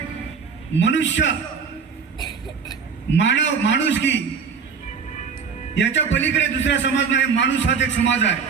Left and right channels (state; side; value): quieter; left; 5.9 dB